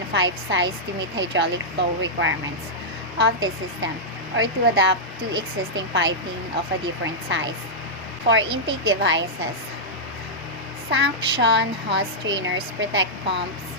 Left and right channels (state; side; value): normal; both; correlation -0.08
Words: pipe size to meet hydraulic flow requirements of the system or to adapt to existing piping of a different size. For intake devices, suction hose strainers protect pumps